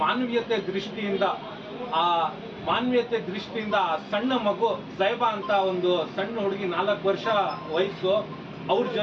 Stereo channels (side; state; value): both; identical; correlation 1.00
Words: ಮಾನವೀಯತೆ ದೃಷ್ಟಿಯಿಂದ ಸಣ್ಣ ಮಗು ಜೈಬಾ ಅಂತ ಒಂದು ಸಣ್ಣ ಹುಡುಗಿ 4 ವರ್ಷ ವಯಸ್ಸು, ಅವ್ರ